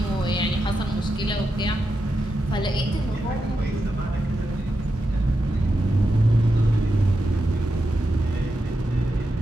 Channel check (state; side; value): normal; both; correlation 0.87